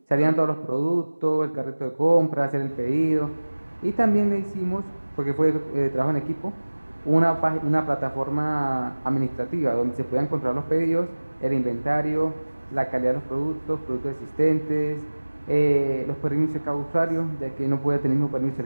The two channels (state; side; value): inverted; both; correlation -1.00